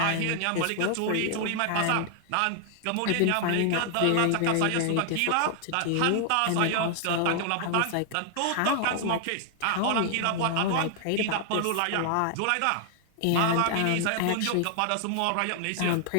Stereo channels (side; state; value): both; different; correlation 0.00